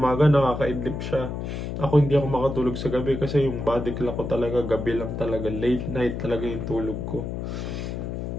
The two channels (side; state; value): left; noise; hum, 5 dB below the sound